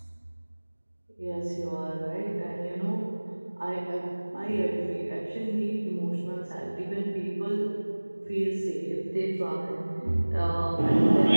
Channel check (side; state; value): both; inverted; correlation -1.00